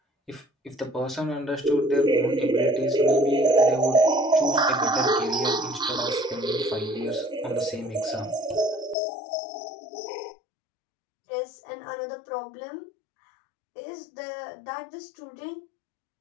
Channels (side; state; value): right; drops out; at 9.0 s